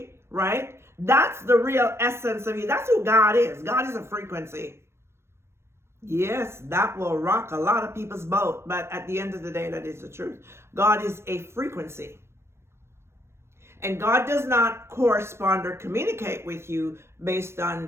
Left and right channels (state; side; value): late; left; 0.12 ms